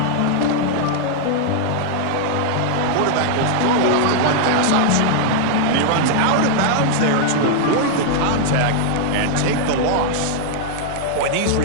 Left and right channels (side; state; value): both; different; correlation -0.01